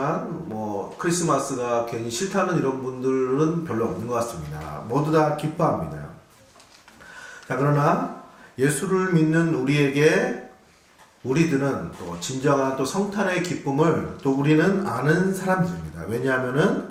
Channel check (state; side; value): identical; both; correlation 1.00